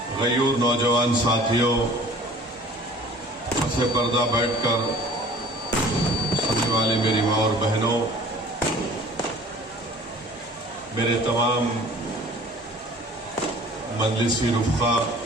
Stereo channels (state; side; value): normal; both; correlation 0.48